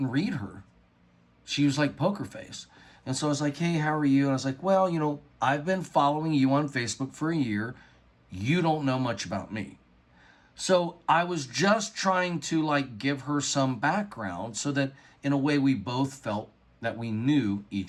read her. She was like poker face. And so I was like, hey, how are you? And I was like, well, you know, I've been following you on Facebook for a year. You don't know much about me. So I was just trying to like give her some background so that in a way we both felt that we knew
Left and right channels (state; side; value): identical; both; correlation 1.00